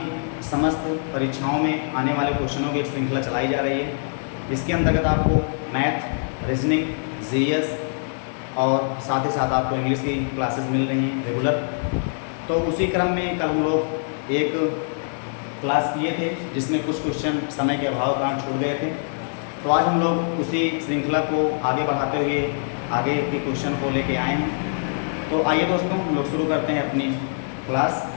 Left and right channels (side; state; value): right; silent; digital silence